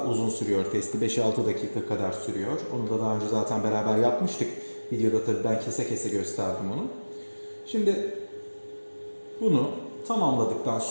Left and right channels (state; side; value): inverted; both; correlation -1.00